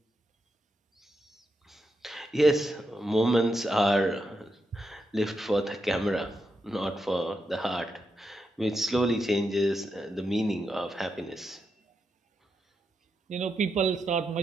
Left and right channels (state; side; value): normal; both; correlation 0.84